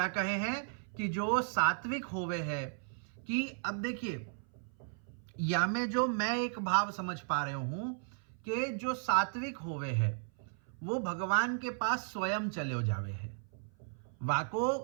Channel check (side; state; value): left; silent; 54 dB below the other